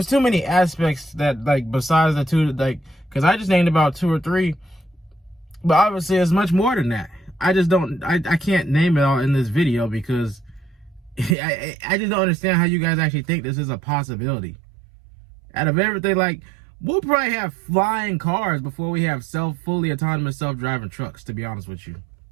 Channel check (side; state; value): left; drops out; at 11.4 s